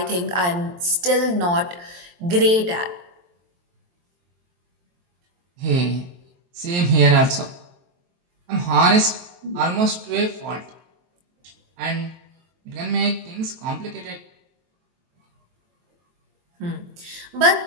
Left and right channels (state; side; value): late; left; 23 ms